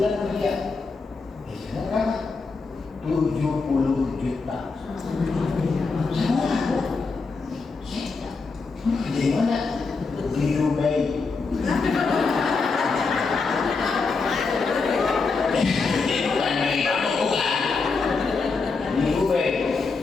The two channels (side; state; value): right; quieter; 4.4 dB